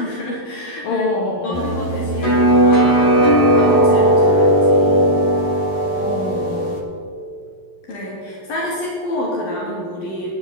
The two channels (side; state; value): right; late; 11 ms